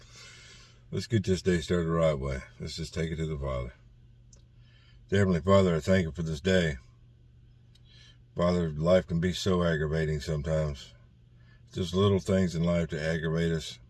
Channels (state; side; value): identical; both; correlation 1.00